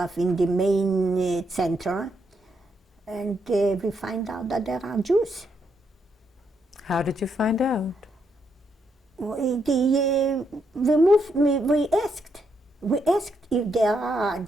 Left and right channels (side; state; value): both; normal; correlation 0.78